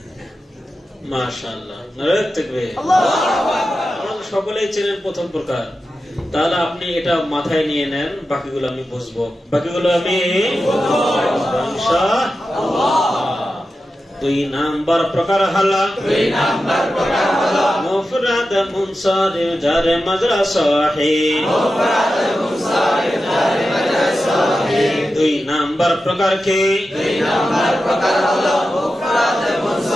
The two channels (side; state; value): both; normal; correlation 0.92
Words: মাশাআল্লাহ, নারে তাকবীর। সকলেই চেনেন প্রথম প্রকার। তাহলে আপনি এটা মাথায় নিয়ে নেন, বাকিগুলো আমি বুঝবো, বাকিগুলো আমি ইনশাআল্লাহ। 2 নাম্বার প্রকার হলো, 2 নাম্বার প্রকার হলো মুফরাদ মুনসারিফ জারে মাজরা সহিহ, মুফরাদ মুনসারিফ জারে মাজরা সহিহ। 2 নাম্বার প্রকার কি? 2 নাম্বার প্রকার হলো মুফরাদ